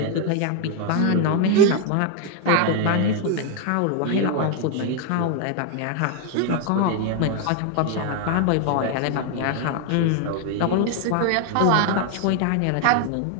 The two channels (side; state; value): both; different; correlation 0.01